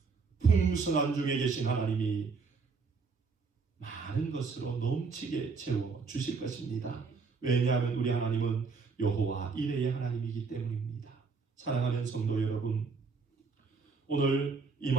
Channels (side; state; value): left; quieter; 4.8 dB